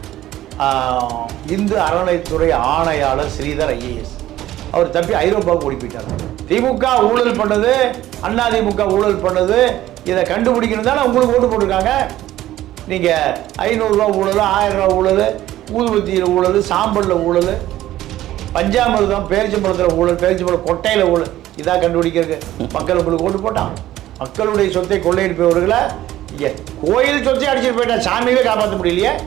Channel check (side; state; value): left; quieter; 14.2 dB